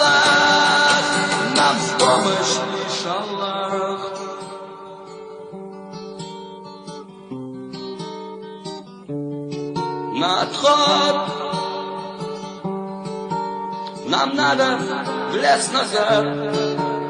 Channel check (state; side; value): identical; both; correlation 1.00